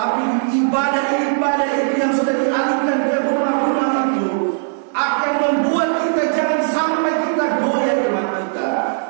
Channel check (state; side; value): silent; left; digital silence